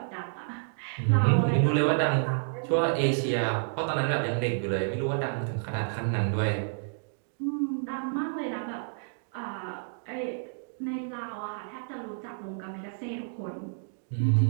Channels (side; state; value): left; silent; digital silence